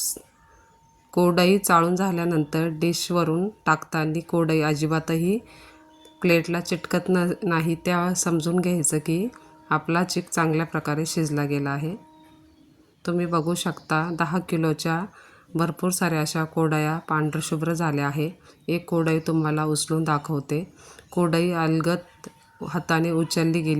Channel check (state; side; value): identical; both; correlation 1.00